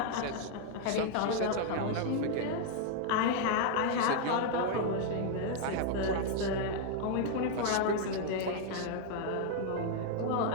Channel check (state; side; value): different; both; correlation 0.00